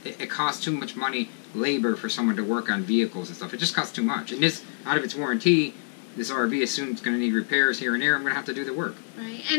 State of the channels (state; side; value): silent; right; 61 dB below the other